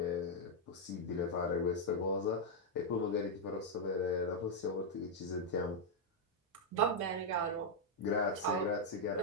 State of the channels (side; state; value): both; normal; correlation -0.03